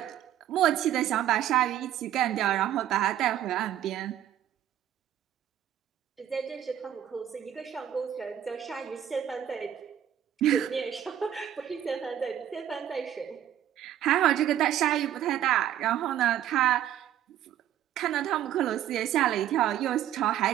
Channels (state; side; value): quieter; left; 11.1 dB